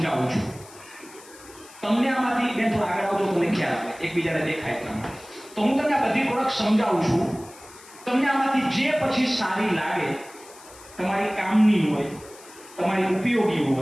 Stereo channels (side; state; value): left; noise; hiss, 21 dB below the sound